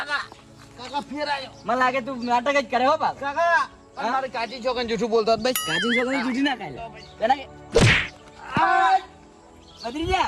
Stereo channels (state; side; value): identical; both; correlation 1.00